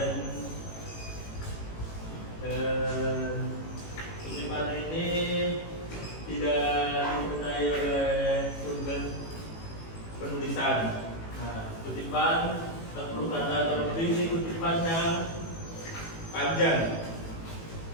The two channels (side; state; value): right; late; 18 ms